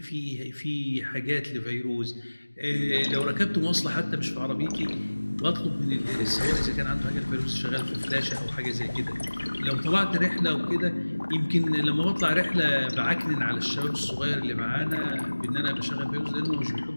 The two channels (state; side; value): inverted; both; correlation -1.00